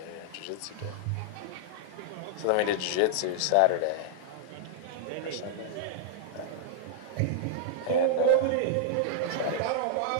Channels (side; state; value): both; different; correlation -0.01